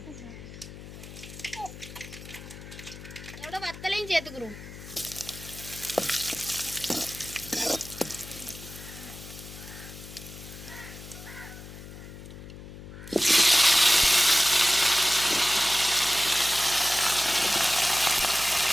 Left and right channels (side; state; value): left; noise; hum, 14 dB below the sound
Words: இதோட வத்தலையும் சேர்த்துக்கிறோம்.